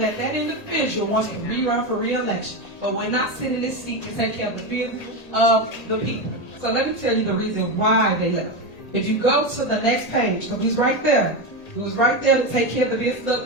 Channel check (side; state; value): right; late; 1.8 ms